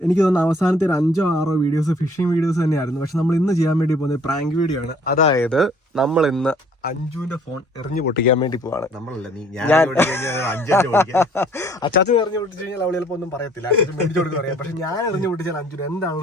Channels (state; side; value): normal; both; correlation 0.57